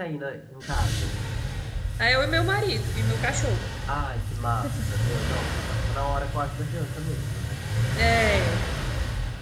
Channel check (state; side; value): identical; both; correlation 1.00